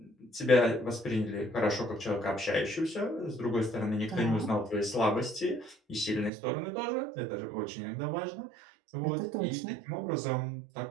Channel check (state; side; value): drops out; left; at 6.3 s